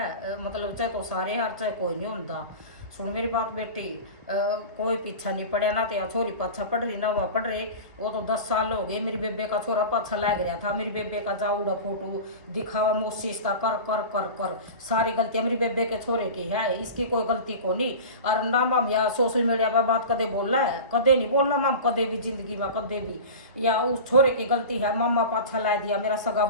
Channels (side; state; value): both; inverted; correlation -0.32